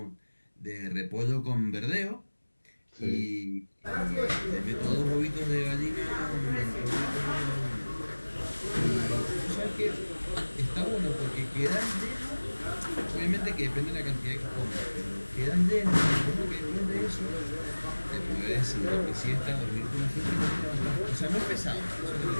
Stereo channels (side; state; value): both; inverted; correlation -1.00